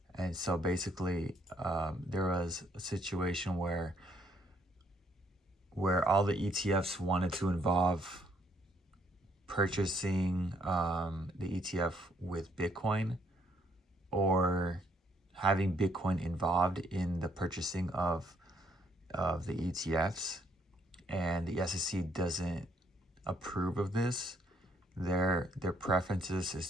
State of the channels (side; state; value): both; normal; correlation 0.69